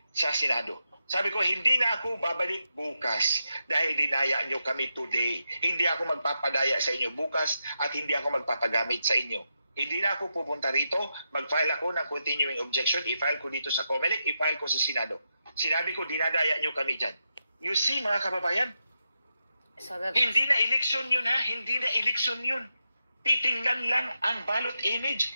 sa Senado. Sabi ko, hindi na ako babalik bukas dahil dinaya nyo kami today. Hindi ako magpapadaya sa inyo bukas at hindi ako magpapagamit sa inyo. Hindi na ako pupunta rito, mag-file ako ng continuing objection, i-file ko dito sa Comelec, i-file ko sa Senado. Sinabi ko, dinadaya nyo kami dyan. You see, mga kababayan, hindi na eleksyon yun ha, hindi na eleksyon yun. Titingnan lang ang ballot image.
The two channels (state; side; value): inverted; both; correlation -0.86